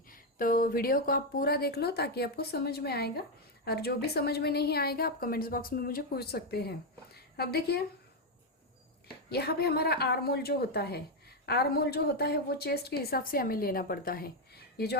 तो वीडियो को आप पूरा देख लो ताकि आपको समझ में आएगा, और जो भी समझ में नहीं आएगा आप कमेंट्स बॉक्स में मुझे पूछ सकते हैं। अब देखिए, यहाँ पे हमारा आर्मोल जो होता है, आर्मोल जो होता है वो चेस्ट के हिसाब से हमें लेना पड़ता है। ये जो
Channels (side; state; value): both; normal; correlation 0.04